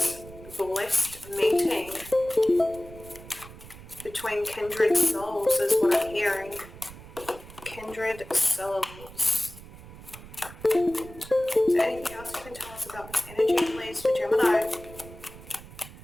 blessed meeting between kindred souls is what I'm hearing. Kindred souls. Is there anything else you can tell us about this energy, please, for Gemini?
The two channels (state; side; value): noise; right; rumble, 17 dB below the sound